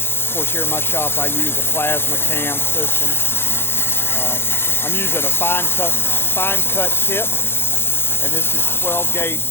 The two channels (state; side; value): late; right; 0.11 ms